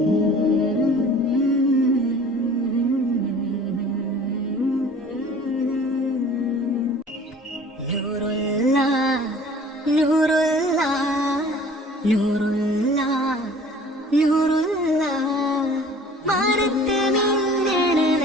നൂറുല്ലാ നൂറുല്ലാ നൂറുല്ലാ മാനത്ത് മിന്നണ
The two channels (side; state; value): both; normal; correlation 0.48